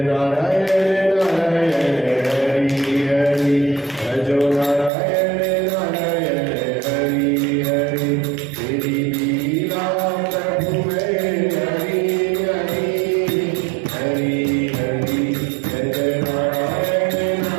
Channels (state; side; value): drops out; left; at 4.9 s